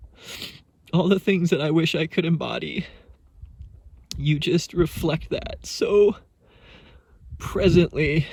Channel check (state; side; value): identical; both; correlation 1.00